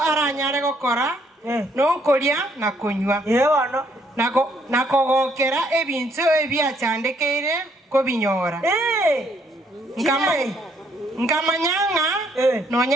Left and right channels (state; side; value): normal; both; correlation 0.68